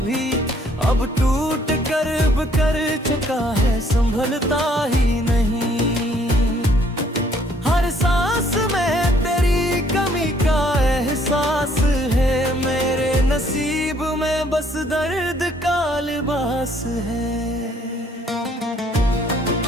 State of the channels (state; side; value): normal; both; correlation 0.64